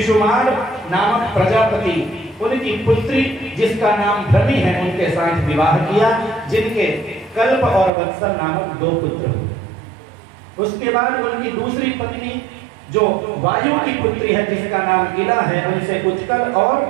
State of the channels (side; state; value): left; drops out; at 7.9 s